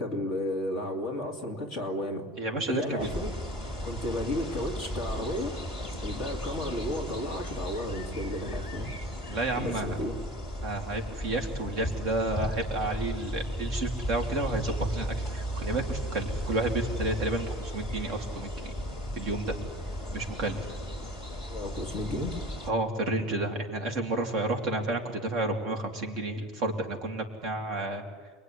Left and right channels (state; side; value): normal; both; correlation 0.38